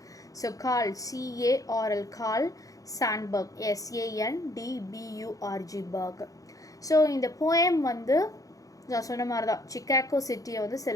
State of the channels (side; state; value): right; late; 0.17 ms